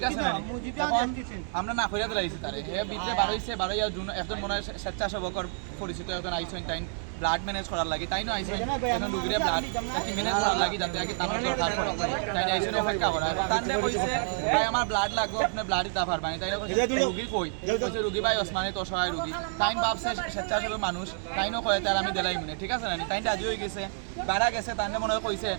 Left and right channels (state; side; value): silent; left; digital silence